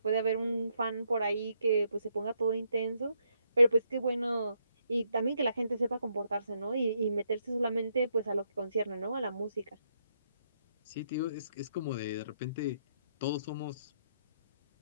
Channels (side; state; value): both; inverted; correlation -0.76